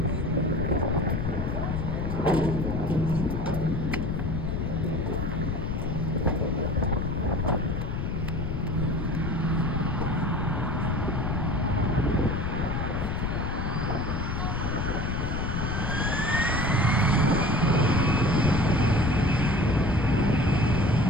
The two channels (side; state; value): left; noise; rumble, 1 dB below the sound